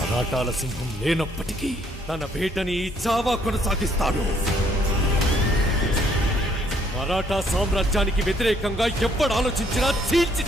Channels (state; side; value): normal; both; correlation 0.67